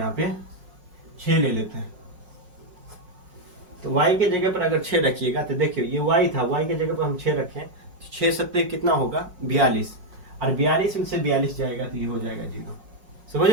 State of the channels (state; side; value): late; left; 5.5 ms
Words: पे 6 ले लेते हैं। तो y के जगह पर अगर 6 रखिएगा तो देखिए ये y था, y के जगह पर हम 6 रखें तो 6 7 कितना होगा, 42, और 42 में से 42 जाएगा तो ये हो जाएगा 0। समझ